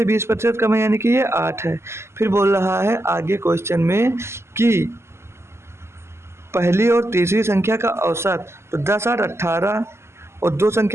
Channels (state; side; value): late; left; 0.13 ms